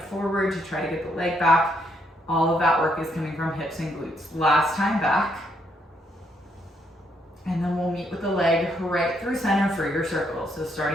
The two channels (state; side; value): normal; both; correlation 0.74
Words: forward to try to get the leg back. All of that work is coming from hips and glutes. Last time back. And then we'll meet with the leg right through center for your circle. So